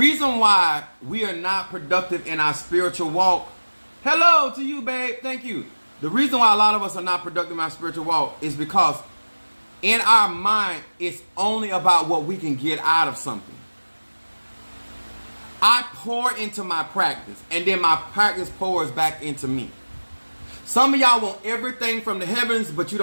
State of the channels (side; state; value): both; inverted; correlation -1.00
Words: why we are not productive in our spiritual walk. Hello to you, babe. Thank you. The reason why a lot of us are not productive in our spiritual walk is because in our mind, it's only about what we can get out of something. I pour into my practice, and then my practice pours back into me. Some of y'all want everything from the heavens, but you